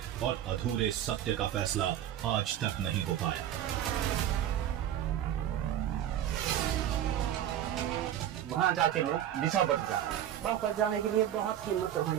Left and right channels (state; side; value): quieter; left; 11.1 dB